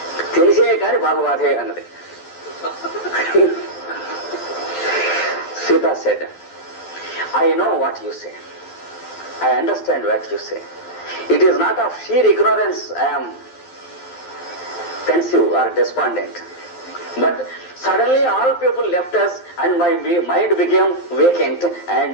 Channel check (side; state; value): right; late; 12 ms